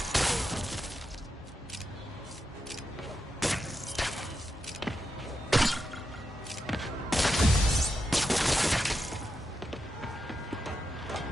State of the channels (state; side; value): normal; both; correlation 0.87